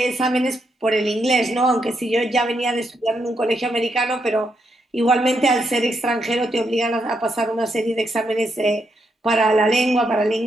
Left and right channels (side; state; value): both; normal; correlation 0.80